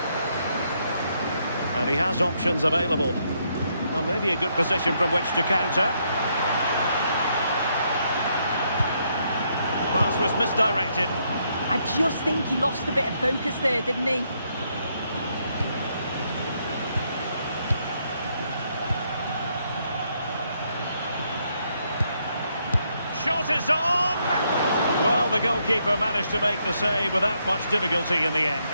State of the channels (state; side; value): inverted; both; correlation -0.75